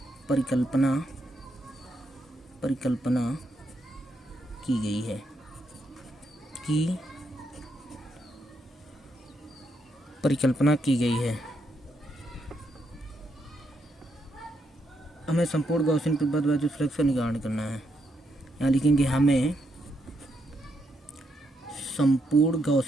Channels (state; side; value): normal; both; correlation 0.78